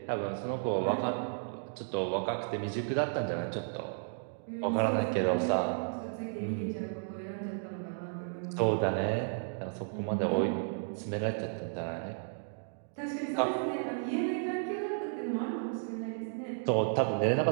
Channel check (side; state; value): left; silent; digital silence